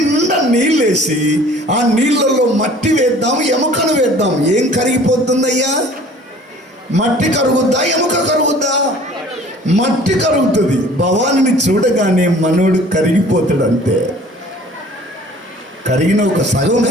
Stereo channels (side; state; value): both; normal; correlation 0.50